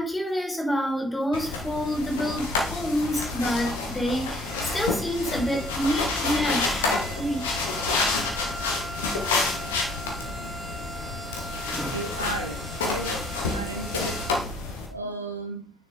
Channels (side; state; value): both; normal; correlation 0.57